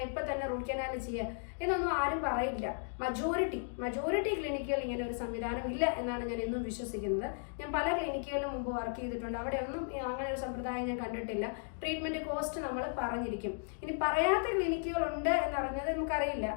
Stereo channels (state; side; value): silent; right; digital silence